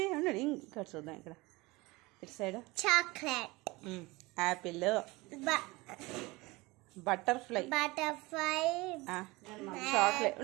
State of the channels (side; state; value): left; quieter; 22.7 dB